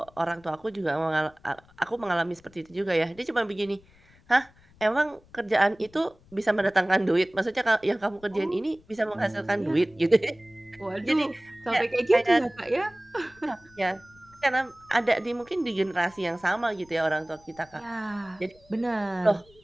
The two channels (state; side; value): noise; left; rumble, 28 dB below the sound